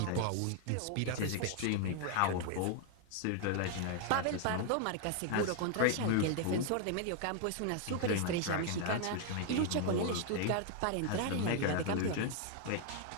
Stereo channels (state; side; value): different; both; correlation 0.00